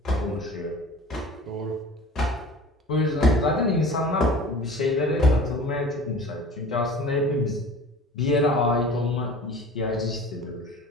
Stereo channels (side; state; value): both; normal; correlation 0.42